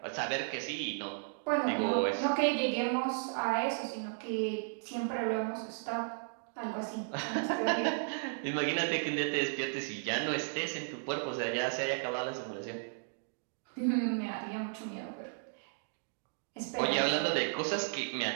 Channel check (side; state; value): left; silent; digital silence